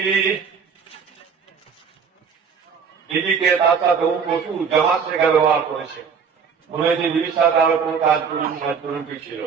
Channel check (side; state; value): left; quieter; 6.3 dB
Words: দিদিকে তার সাথে প্রচুর জামাত শেখা ব্যবহার করেছে, মনে হয়েছে দিদির সাথে আরো কোন কাজ করুন ছিল।